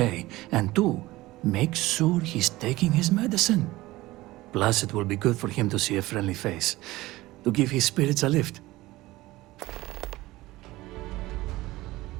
And two, make sure he's taking his medicine. Plus, it will be good for him to see a friendly face, to give his spirits a lift.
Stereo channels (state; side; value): quieter; left; 18.5 dB